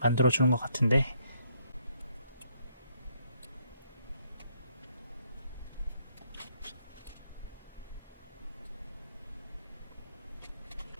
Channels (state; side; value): inverted; both; correlation -0.70